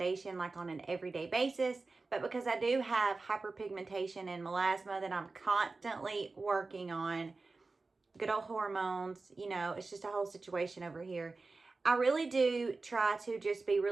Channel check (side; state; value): left; quieter; 3.7 dB